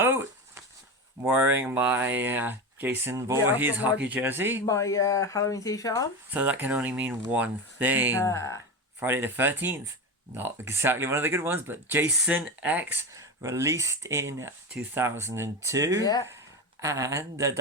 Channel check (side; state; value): both; normal; correlation 0.21